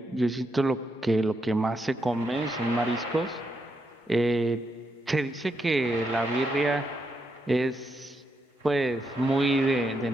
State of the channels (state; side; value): normal; both; correlation 0.81